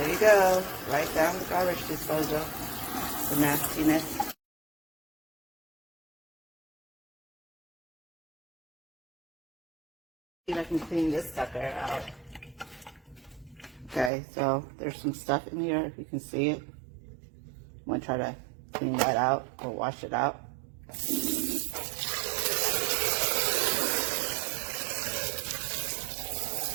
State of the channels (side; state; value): left; drops out; at 14.1 s